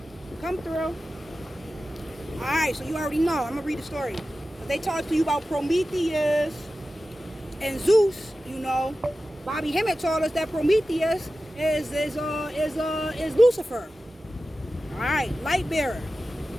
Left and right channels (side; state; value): both; normal; correlation 0.94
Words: come through. Alright, so you already know. I'm gonna read the story. They talk to you about Prometheus and Zeus, you know. Bobby Hemmett told us that Prometheus is Lucifer. Alright, light bearer.